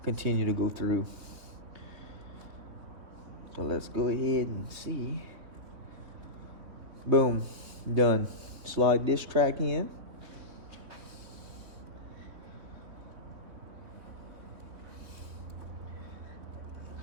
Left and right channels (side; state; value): left; late; 3.7 ms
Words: continue to go through. So let's go ahead and see. Boom, done. Slide this track in.